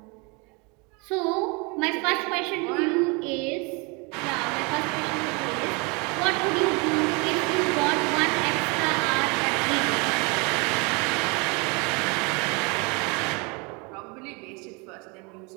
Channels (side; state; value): left; quieter; 29.9 dB